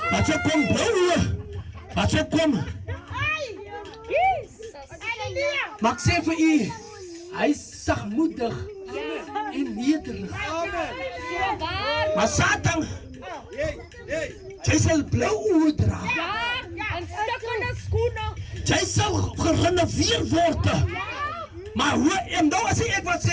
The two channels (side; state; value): both; identical; correlation 1.00